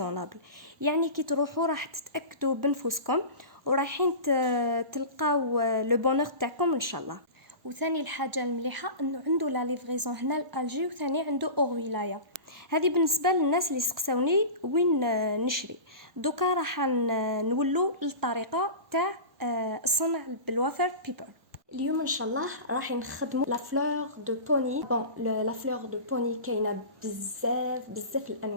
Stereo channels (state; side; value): late; left; 1.1 ms